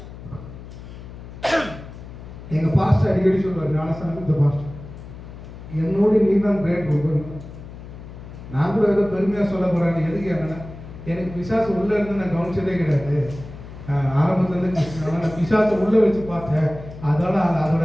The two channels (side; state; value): left; noise; hum, 14 dB below the sound